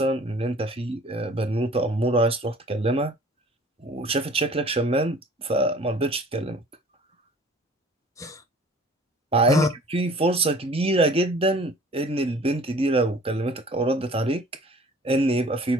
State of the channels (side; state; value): both; normal; correlation 0.49